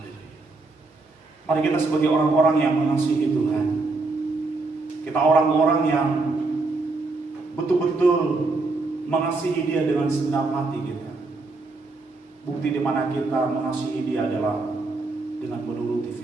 Mari kita sebagai orang-orang yang mengasihi Tuhan, kita orang-orang yang betul-betul mengasihi Dia dengan segenap hati kita. Bukti di mana kita mengasihi Dia adalah dengan menuruti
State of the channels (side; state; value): left; quieter; 3.5 dB